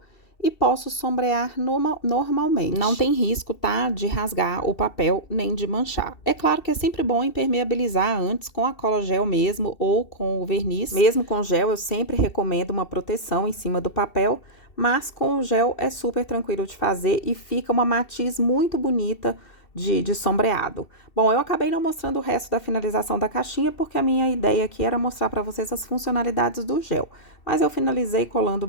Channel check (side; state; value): right; late; 2.7 ms